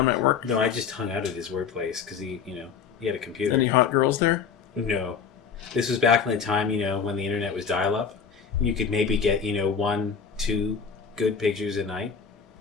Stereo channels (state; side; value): quieter; right; 6.5 dB